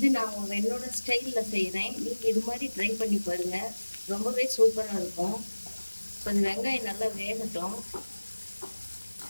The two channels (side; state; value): both; inverted; correlation -1.00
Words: நான் என்னோட ஸ்டைலில் செய்கிறேன். நீங்கள் இது மாதிரி ட்ரை பண்ணி பாருங்கள், ரொம்பவே சூப்பராக இருக்கும். கொஞ்சம் வெங்காயம் நல்லா வேகட்டும்.